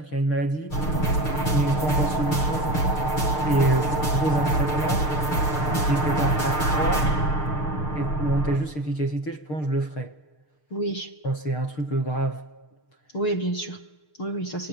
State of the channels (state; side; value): late; right; 6.6 ms